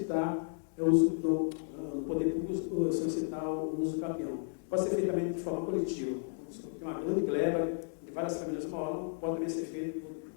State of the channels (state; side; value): silent; right; digital silence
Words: no poder público, solicitar o uso capião. Pode ser feito também de forma coletiva. Tem uma grande gleba de várias famílias moram, pode também ser feito